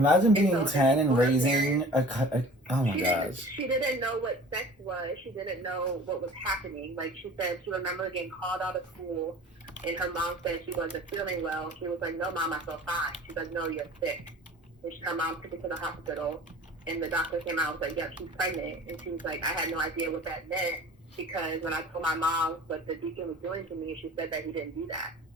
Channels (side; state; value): both; normal; correlation 0.44